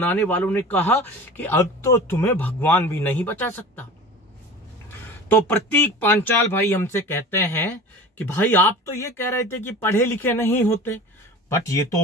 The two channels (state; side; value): normal; both; correlation 0.37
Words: वालों ने कहा कि अब तो तुम्हें भगवान भी नहीं बचा सकता। तो प्रतीक पंचाल भाई हमसे कहते हैं कि भाई आप तो ये कह रहे थे कि पढ़े लिखे नहीं होते, बट ये